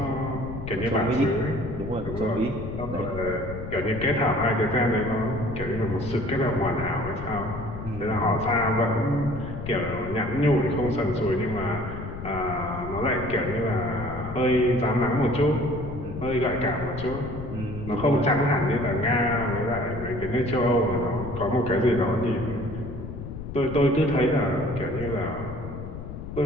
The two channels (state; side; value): noise; left; rumble, 9 dB below the sound